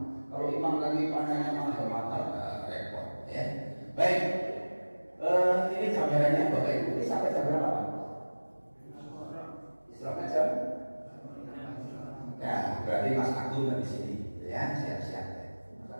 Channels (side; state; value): both; inverted; correlation -1.00